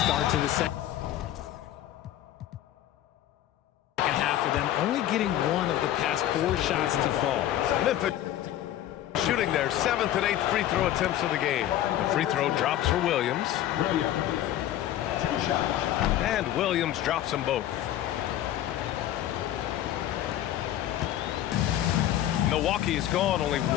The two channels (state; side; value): quieter; right; 12.6 dB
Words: start to the second half for them, only getting one of the past 4 shots to fall. Memphis shooting their 7th and 8th free throw attempts of the game. The free throw drops for Williams. And Williams drops them both. Milwaukee is gone, only